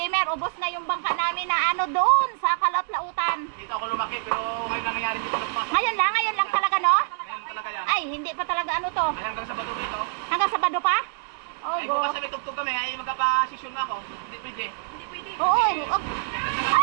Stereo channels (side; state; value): left; silent; digital silence